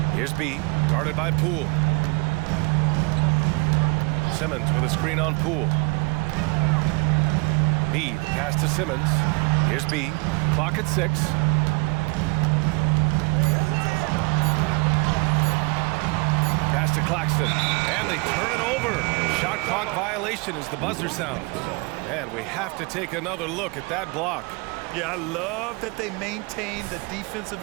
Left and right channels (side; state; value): left; quieter; 29.2 dB